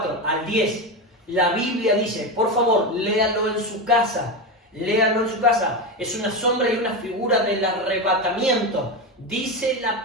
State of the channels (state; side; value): normal; both; correlation 0.16